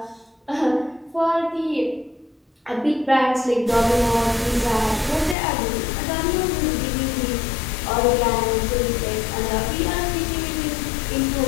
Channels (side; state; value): right; drops out; at 5.4 s